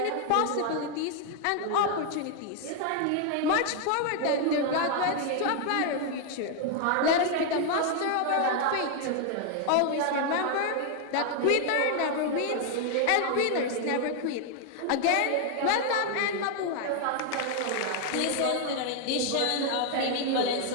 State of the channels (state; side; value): different; both; correlation 0.00